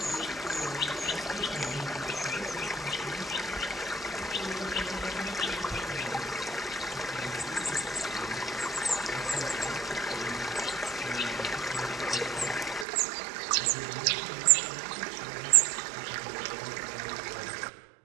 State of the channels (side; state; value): left; drops out; at 12.9 s